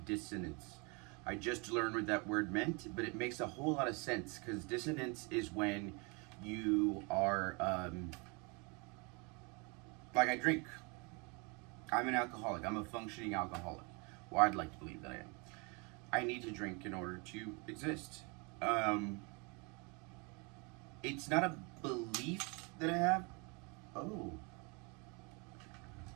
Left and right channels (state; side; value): quieter; left; 31.1 dB